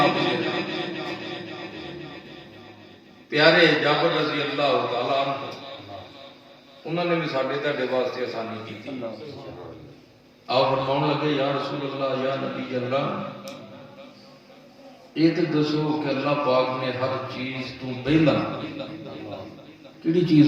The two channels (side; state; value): both; identical; correlation 1.00